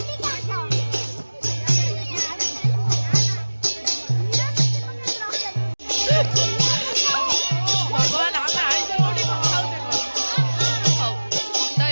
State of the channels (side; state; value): both; inverted; correlation -1.00